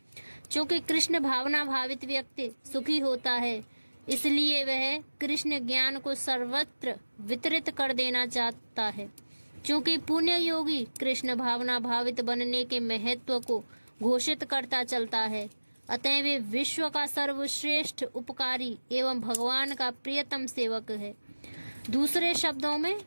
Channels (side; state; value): both; inverted; correlation -1.00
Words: चूंकि कृष्ण भावना भावित व्यक्ति सुखी होता है, इसलिए वह कृष्ण ज्ञान को सर्वत्र वितरित कर देना चाहता है। क्योंकि पुण्य योगी कृष्ण भावना भावित बनने के महत्व को घोषित करता चलता है, अतः वे विश्व का सर्वश्रेष्ठ उपकारी एवं भगवान का प्रियतम सेवक है। दूसरे शब्दों में